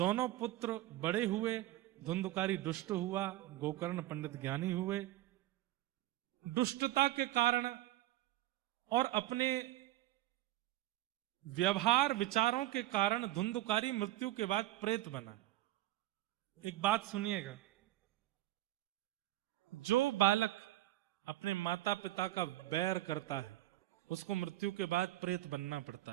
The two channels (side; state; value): left; quieter; 16.1 dB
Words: पुत्र बड़े हुए, धुंधुकारी दुष्ट हुआ, गोकर्ण पंडित ज्ञानी हुए। दुष्टता के कारण और अपने व्यवहार विचारों के कारण धुंधुकारी मृत्यु के बाद प्रेत बना। एक बात सुनिएगा, जो बालक अपने माता पिता का बैर करता है उसको मृत्यु के बाद प्रेत बनना पड़ता